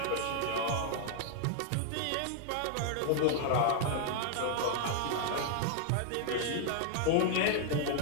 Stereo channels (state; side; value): different; both; correlation 0.00